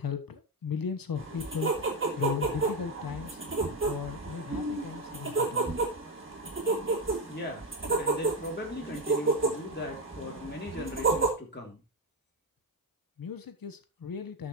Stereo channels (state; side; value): normal; both; correlation 0.09